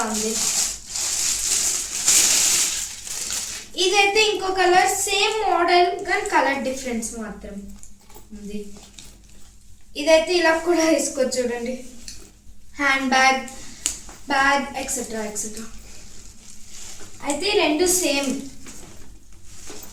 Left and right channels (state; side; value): identical; both; correlation 1.00